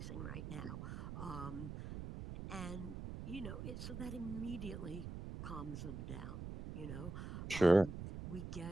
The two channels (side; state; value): right; noise; rumble, 7 dB below the sound